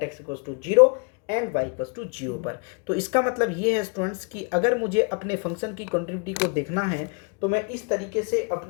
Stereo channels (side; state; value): right; quieter; 34.6 dB